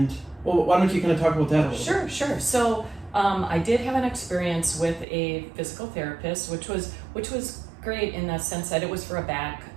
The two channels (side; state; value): left; drops out; at 5.1 s